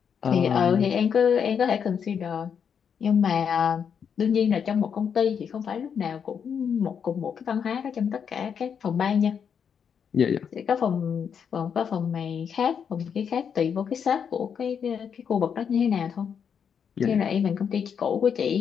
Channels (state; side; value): quieter; right; 7.3 dB